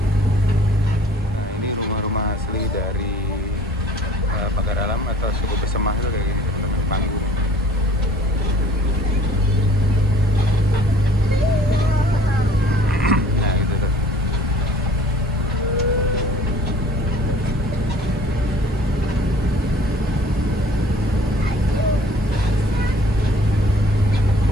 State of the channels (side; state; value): both; normal; correlation 0.52